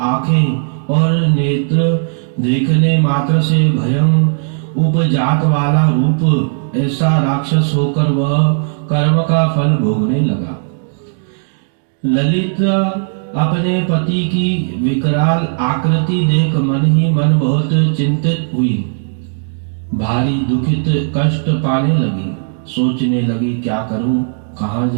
आंखें और नेत्र, देखने मात्र से भयं उपजात वाला रूप, ऐसा राक्षस होकर वह कर्म का फल भोगने लगा। ललित अपने पति की विकराल आकृति देख मन ही मन बहुत चिंतित हुई। भारी दुखित कष्ट पाने लगी। सोचने लगी, क्या करूं, कहां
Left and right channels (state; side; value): silent; left; digital silence